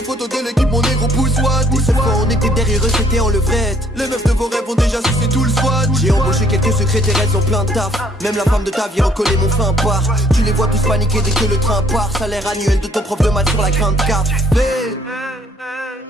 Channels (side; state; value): both; normal; correlation 0.62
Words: photos de l'équipe, mon négro pousse what. Des seules fois on était derrière eux, c'était en levrette. Les meufs de vos rêves ont déjà sucé tout le SWAT. J'ai embauché quelques secrétaires, elles ont plein de taf. Même la femme de ta vie recollait mon fin part. Tu les vois tous paniquer dès que le train part. Salaire annuel de ton prof de maths sur la grande carte. Mais